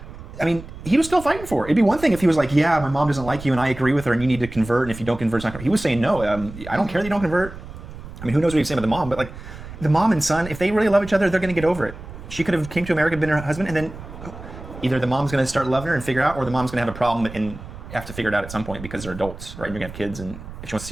I mean, he was still fighting for her. It'd be one thing if he was like, yeah, my mom doesn't like you, and I agree with her, and you need to convert, and if you don't convert, it's not... He was saying, no, I don't care that you don't convert. I mean, who knows what he was saying about the mom, but, like, the mom and son, if they really love each other, they're going to get over it. She could have came to America, been her husband, and then either the mom's going to start loving her and figure out, or the mom's going to have a problem and have to figure it out at some point because they're adults, right? You're going to have kids, and if she wants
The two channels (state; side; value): noise; right; rumble, 13 dB below the sound